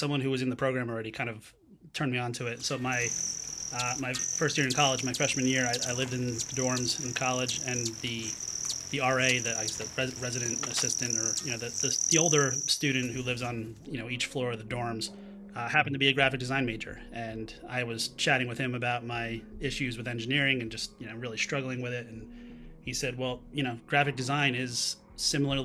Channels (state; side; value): identical; both; correlation 1.00